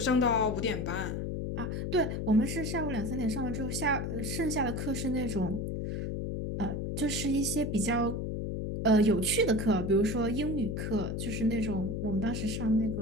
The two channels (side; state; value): left; noise; hum, 2 dB below the sound